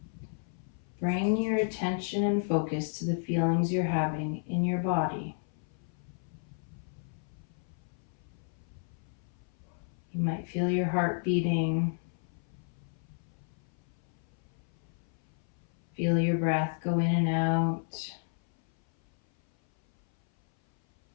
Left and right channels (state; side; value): silent; right; 56 dB below the other